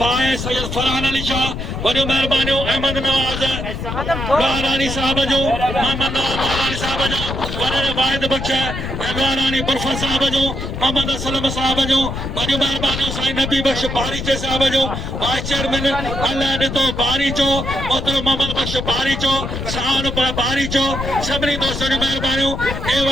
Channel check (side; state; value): left; noise; rumble, 5 dB below the sound